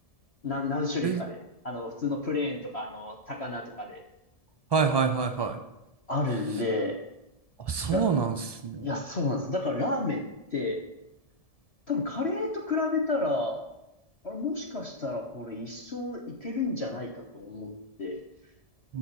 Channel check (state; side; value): late; right; 1.7 ms